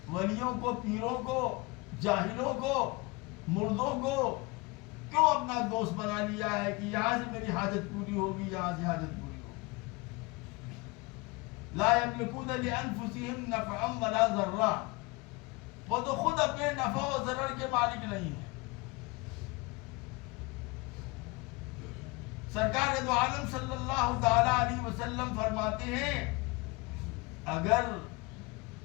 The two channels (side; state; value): right; quieter; 25.7 dB